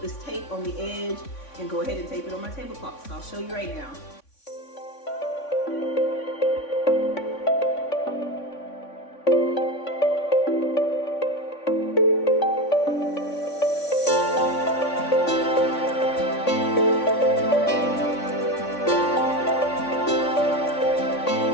tape on the edge, and go ahead and tape it on my tablecloth. So I'll show you right now.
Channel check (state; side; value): late; right; 3.6 ms